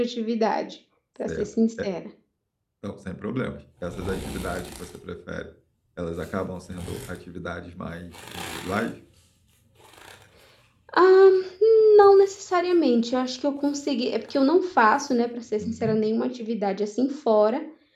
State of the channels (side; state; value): both; identical; correlation 1.00